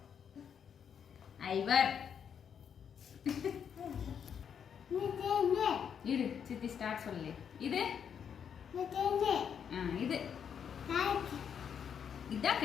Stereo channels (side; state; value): right; quieter; 7.7 dB